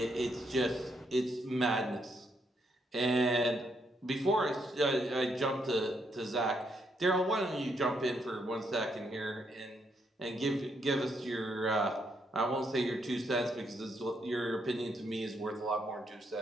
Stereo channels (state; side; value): normal; both; correlation 0.76